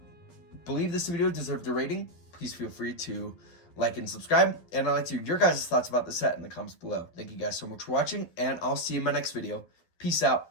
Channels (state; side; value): late; right; 12 ms